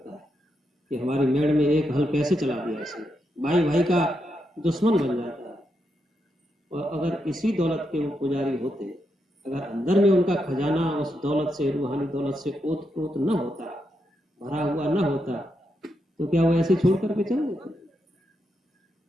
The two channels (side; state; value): both; normal; correlation 0.83